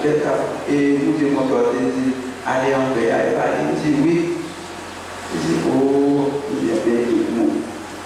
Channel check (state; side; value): identical; both; correlation 1.00